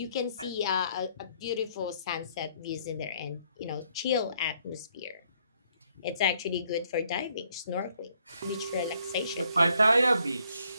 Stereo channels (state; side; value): inverted; both; correlation -0.69